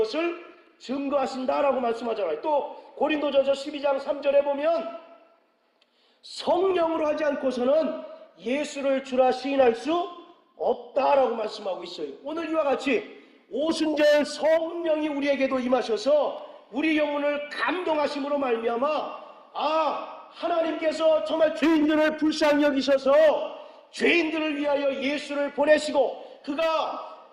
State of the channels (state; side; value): identical; both; correlation 1.00